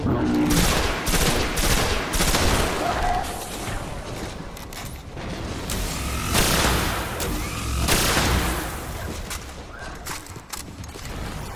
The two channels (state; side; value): identical; both; correlation 1.00